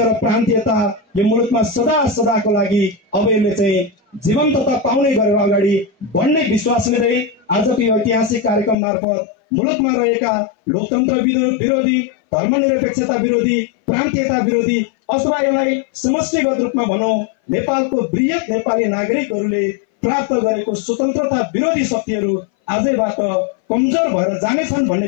प्रान्तीयता यो मुलुकमा सदा सदाको लागि अब यसले चाहिँ जीवन्तता पाउने गरेर अगाडि बढ्ने विश्वास लिँदै आजको यो ऐतिहासिक कार्यक्रम मार्फत मुलुकमा रहेका लोकतन्त्र विरोधी, धर्मनिरपेक्षता विरोधी, प्रान्तीयता विरोधी अथवा यसलाई समष्टिगत रूपमा भनौं नेपालको वृहत नेपाली नागरिकहरूले प्राप्त गरेको स्वतन्त्रता विरोधी शक्तिहरू आजैबाट कमजोर भएर जानेछन्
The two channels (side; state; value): right; drops out; at 8.8 s